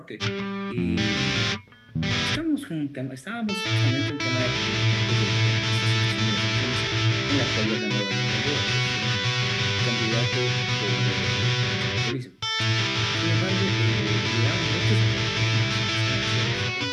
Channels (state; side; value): identical; both; correlation 1.00